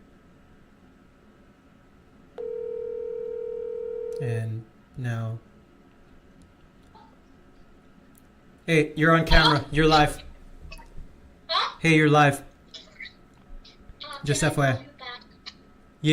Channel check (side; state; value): both; identical; correlation 1.00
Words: And now... Hey, you're on camera. You're live. Huh? Hey, you're live. Just Can I FYI. call you back?